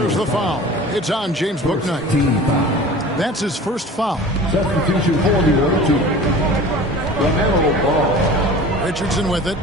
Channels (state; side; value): normal; both; correlation 0.40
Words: the foul. It's on James Bouknight. That's his first foul. Substitution formula to LaMelo Ball. Richardson with it.